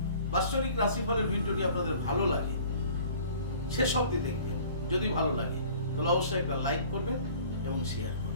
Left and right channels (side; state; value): both; inverted; correlation -0.49